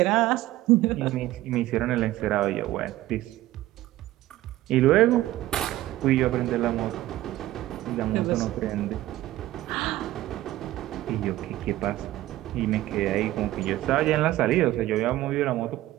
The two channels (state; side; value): quieter; left; 15.6 dB